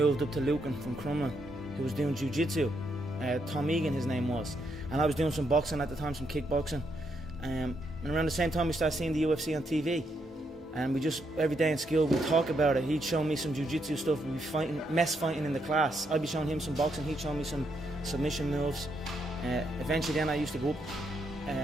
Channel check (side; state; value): both; normal; correlation 0.78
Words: up to Lucan from Crumlin who was doing jiu-jitsu. Tom Egan, his name was. And I was doing some boxing at the time, some kickboxing. And around the same time we started seeing the UFC on TV. And we just, every day in school, we'd talk about it. He'd show me some jiu-jitsu stuff. We'd be mess fighting in the class. I'd be showing him some boxing. He'd show me some submission moves. Eventually then I used to go up